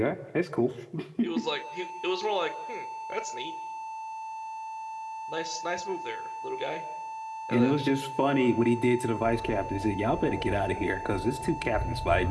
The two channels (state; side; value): identical; both; correlation 1.00